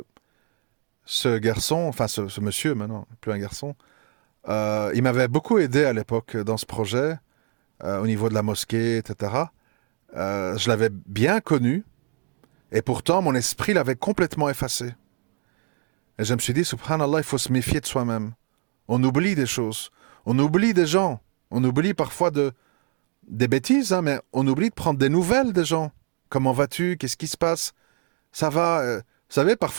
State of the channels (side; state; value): left; quieter; 35.3 dB